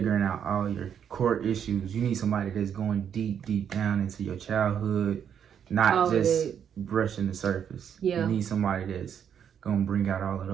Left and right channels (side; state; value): left; quieter; 8.4 dB